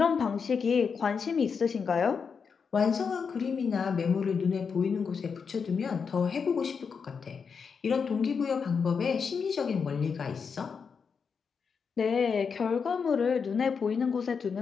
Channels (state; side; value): quieter; right; 5.9 dB